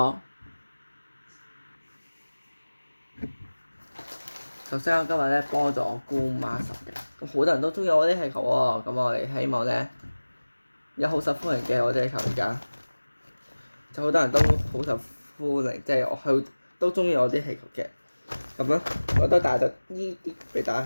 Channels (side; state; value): both; inverted; correlation -1.00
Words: 首先我今日咧幫咗我姑媽10嘅，咁好多人都中意我啲氣球喎。咁我哋希望咧有好受歡迎嘅我啲氣球而家，就好多人都好受歡迎，即係我都中意我啲氣球嘅。咁咧我都帶咗呢啲俾大